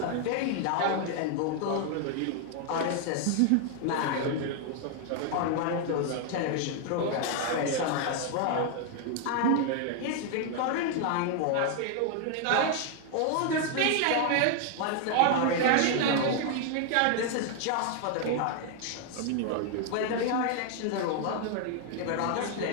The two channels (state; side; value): different; both; correlation 0.00